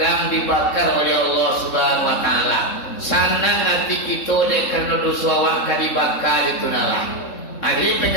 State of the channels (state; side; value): late; right; 3.7 ms